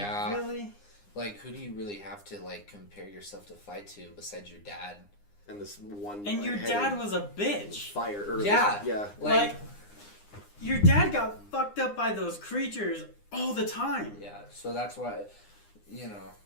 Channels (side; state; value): right; late; 9.8 ms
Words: Like, really? Like, who do you really have to, like, compare yourself to fight to besides your dad? And this one... And your dad was a bitch. Fire. Or Yeah. Yeah. Like, your dad got fucked up by those creatures all the time. Yeah, so that's why, you know,